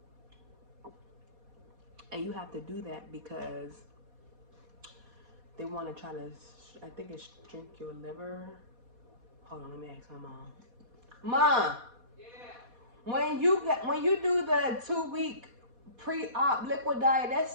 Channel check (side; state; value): left; late; 4.2 ms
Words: And you have to do that because they want to try to, I think it's shrink your liver. Hold on, let me ask my mom. Mom, yeah. When you do the 2-week pre-op liquid diet,